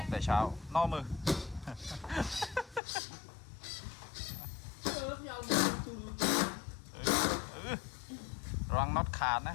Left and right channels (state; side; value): drops out; right; at 2.8 s